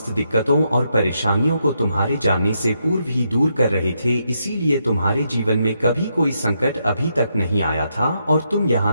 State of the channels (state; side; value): inverted; both; correlation -0.80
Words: दिक्कतों और परेशानियों को तुम्हारे जानने से पूर्व ही दूर कर रहे थे। इसीलिए तुम्हारे जीवन में कभी कोई संकट अभी तक नहीं आया था और तुम